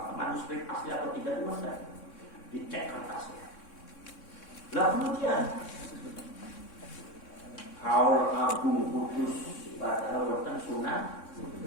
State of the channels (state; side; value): late; right; 3.6 ms